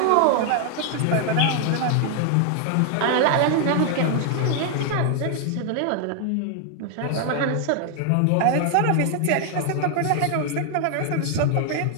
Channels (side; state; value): both; different; correlation 0.00